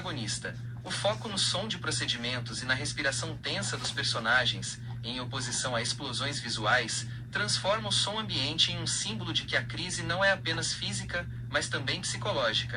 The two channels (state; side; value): identical; both; correlation 1.00